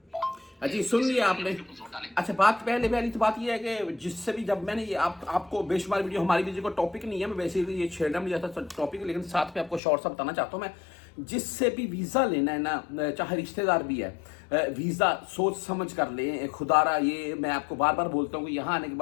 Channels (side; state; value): right; drops out; at 9.8 s